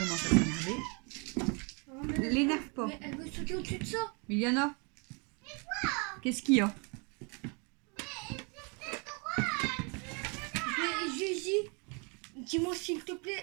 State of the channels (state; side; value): quieter; left; 33.7 dB